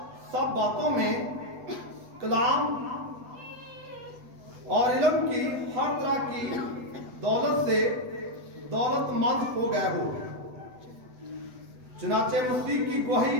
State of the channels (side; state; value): left; late; 8.0 ms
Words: सब बातों में कलाम और इल्म की हर तरह की दौलत से दौलतमंद हो गए हो। चुनाचे मसीह की गवाही